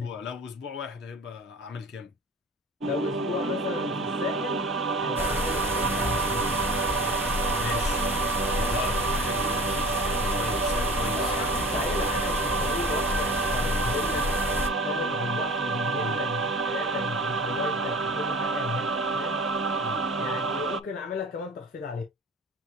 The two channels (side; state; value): both; normal; correlation 0.39